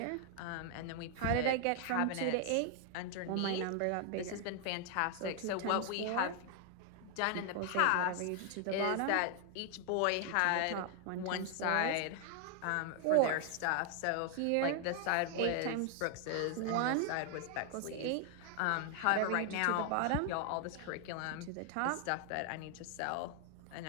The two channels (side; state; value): both; different; correlation 0.00